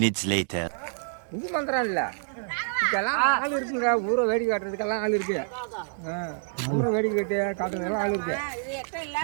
later. இது மந்திரம் இல்ல, இதுக்கெல்லாம் ஆள் இருக்குங்க. ஊரை வேடிக்கை காட்டுறதுக்கெல்லாம் ஆள் இருக்கு. ஊரை வேடிக்கை காட்டுறதுக்கெல்லாம் ஆள் இருக்கு.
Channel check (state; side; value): silent; left; digital silence